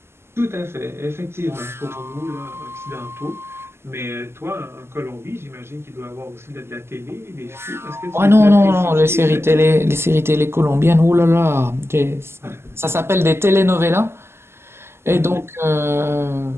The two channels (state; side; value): late; left; 0.12 ms